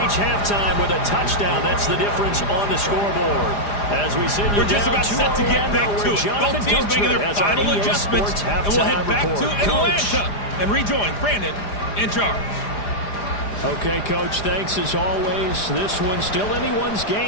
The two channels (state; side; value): late; right; 4.9 ms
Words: halftime with a touchdown. That's the difference on the scoreboard. As we send you We're just about set to get back to it. Both teams making their final adjustments, and we'll head back to Atlanta and rejoin Brandon in charge. Okay, Coach, thanks as always. This one's still anyone's